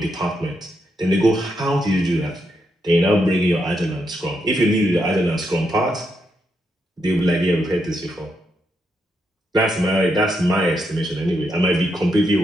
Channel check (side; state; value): both; normal; correlation 0.81